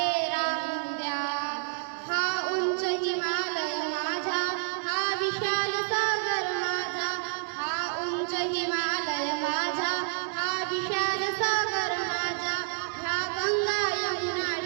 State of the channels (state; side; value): silent; left; digital silence